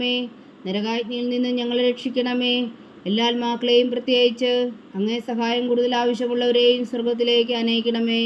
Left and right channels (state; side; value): identical; both; correlation 1.00